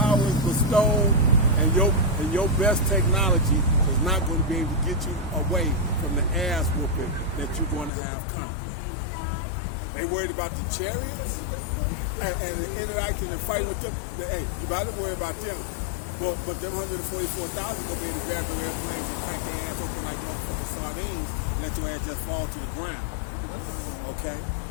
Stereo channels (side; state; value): right; drops out; at 7.9 s